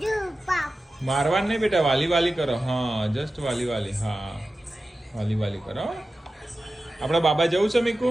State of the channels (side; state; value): both; normal; correlation 0.94